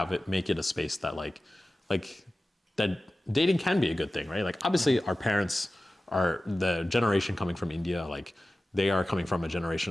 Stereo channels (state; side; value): normal; both; correlation 0.95